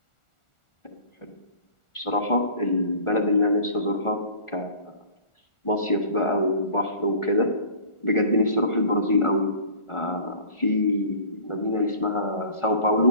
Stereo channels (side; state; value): right; late; 1.4 ms